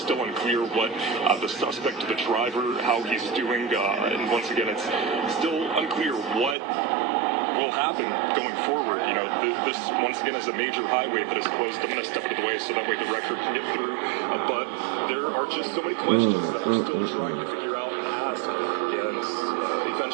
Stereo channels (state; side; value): drops out; left; at 6.6 s